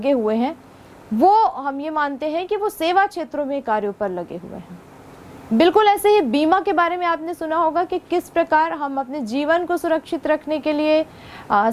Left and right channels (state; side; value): identical; both; correlation 1.00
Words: हुए हैं वो हम ये मानते हैं कि वो सेवा क्षेत्रों में कार्यों पर लगे हुए हैं। बिल्कुल ऐसे ही बीमा के बारे में आपने सुना होगा कि किस प्रकार हम अपने जीवन को सुरक्षित रखने के लिए,